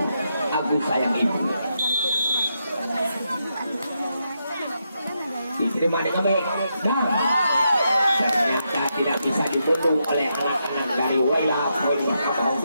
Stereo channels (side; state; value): both; inverted; correlation -0.82